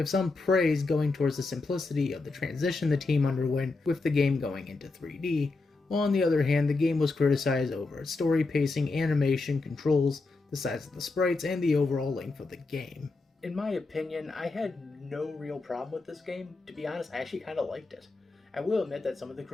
some praise going towards the simplicity of the transition the team underwent with the game going into 3D, while on the other hand the game was criticized over its story pacing, animation, controls, the size of the sprites, and the overall length of the game. In my opinion, I had no real problem with this game. To be honest, I actually kind of liked it. I will admit that some of the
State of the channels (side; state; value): right; quieter; 3.6 dB